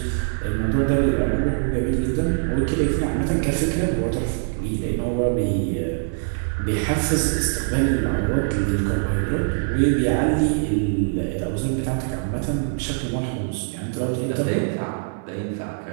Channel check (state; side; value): silent; left; 59 dB below the other